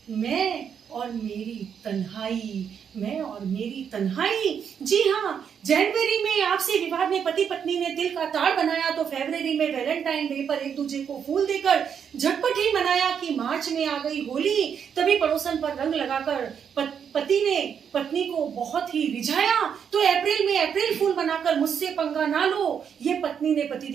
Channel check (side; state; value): left; quieter; 7.6 dB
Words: मैं और मेरी तन्हाई। जी हाँ, जनवरी में आपसी विवाद में पति पत्नी ने तिल का ताड़ बनाया, तो फरवरी में वैलेंटाइन डे पर एक दूसरे को फूल देकर झटपट ही मनाया। कि मार्च में आ गई होली, तभी पड़ोसन पर रंग लगाकर पति ने पत्नी को बहुत ही रिझाया। तो अप्रैल में अप्रैल फूल बनाकर मुझसे पंगा ना लो, ये पत्नी ने